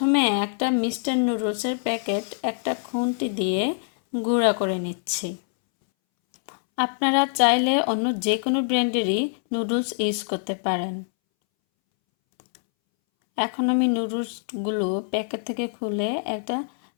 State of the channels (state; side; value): silent; right; 62 dB below the other